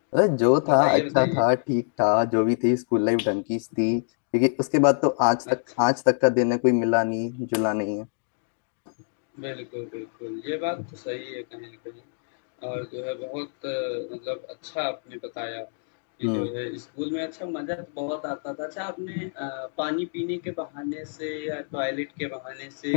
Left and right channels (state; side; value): silent; right; digital silence